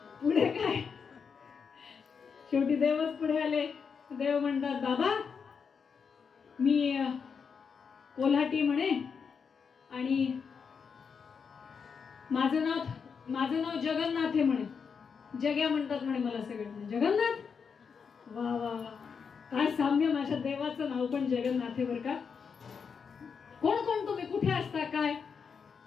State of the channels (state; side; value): quieter; right; 6.1 dB